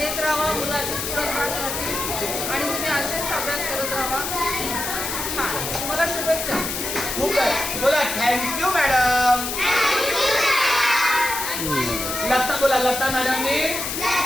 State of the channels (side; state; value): left; noise; hiss, 4 dB below the sound